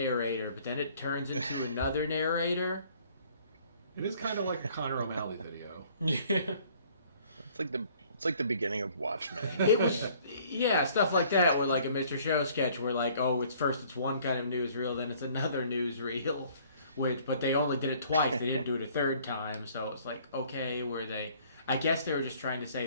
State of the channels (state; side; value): inverted; both; correlation -0.57